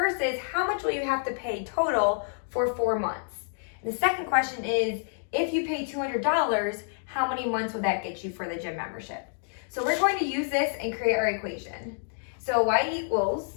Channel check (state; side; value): silent; right; digital silence